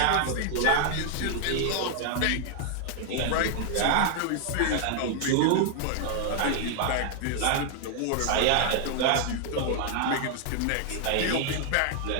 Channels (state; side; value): different; both; correlation 0.00